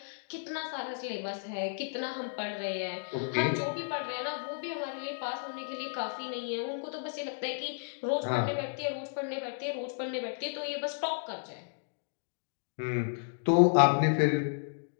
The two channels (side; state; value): right; silent; digital silence